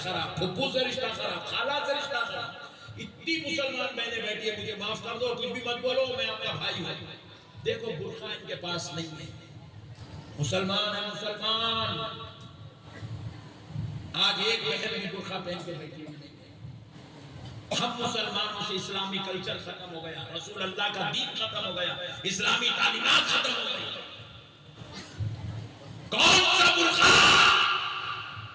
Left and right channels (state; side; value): identical; both; correlation 1.00